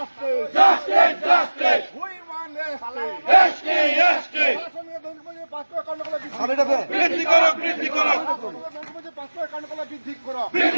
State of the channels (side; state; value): both; inverted; correlation -1.00